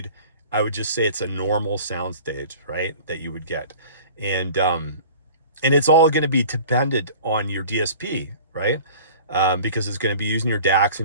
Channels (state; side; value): inverted; both; correlation -0.43